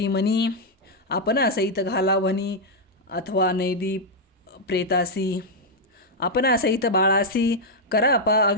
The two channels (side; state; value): both; normal; correlation -0.02